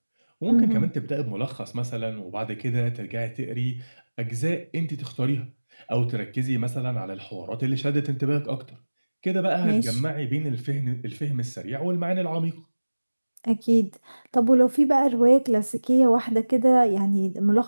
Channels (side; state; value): both; inverted; correlation -1.00